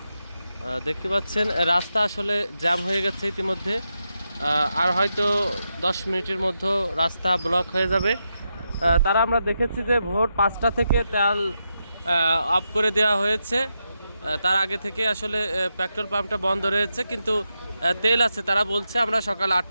দেখতে পাচ্ছেন। রাস্তা আসলে জ্যাম হয়ে গেছে ইতিমধ্যে, আর হয়তো 10 মিনিটের মধ্যে রাস্তা ব্লক হয়ে যাবে। তারা আমরা দেখেছি যে ভোর 5টা থেকে তেল অফ করে দেওয়া হয়েছে। তার আগে থেকে আসলে পেট্রোল পাম্পটা বন্ধ রয়েছে, কিন্তু তেল আছে। তারা বলছে আমরা সকাল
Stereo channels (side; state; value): both; inverted; correlation -0.86